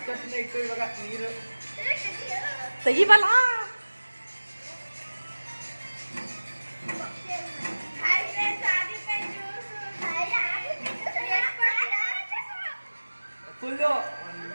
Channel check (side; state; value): both; inverted; correlation -1.00